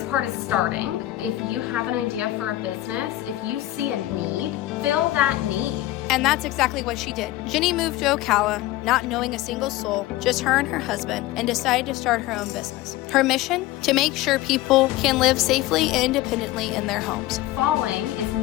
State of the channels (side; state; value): right; quieter; 16.3 dB